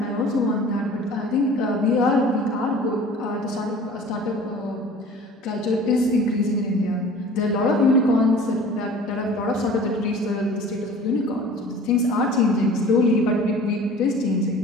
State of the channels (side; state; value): both; normal; correlation 0.44